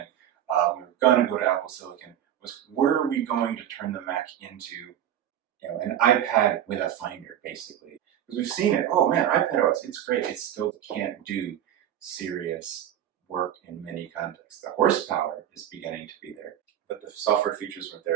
we were going to go to Apple Silicon, was were we going to turn the Mac into an iPad with a Finder, basically? Because we've seen it. Oh man, iPadOS, it's great. It still can't do serious work in many contexts. The horsepower is beginning to be there, but the software features weren't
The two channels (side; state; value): left; quieter; 10.8 dB